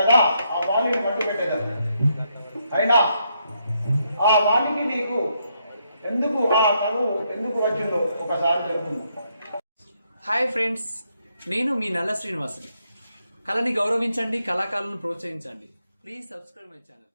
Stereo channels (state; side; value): inverted; both; correlation -0.77